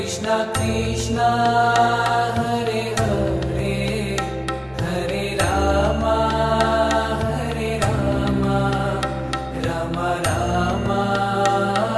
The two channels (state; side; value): identical; both; correlation 1.00